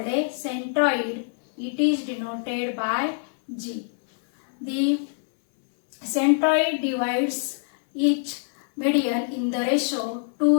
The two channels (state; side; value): silent; right; 62 dB below the other